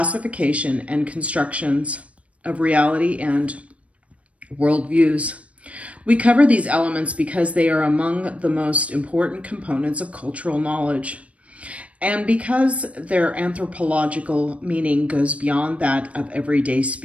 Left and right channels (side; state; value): left; late; 0.064 ms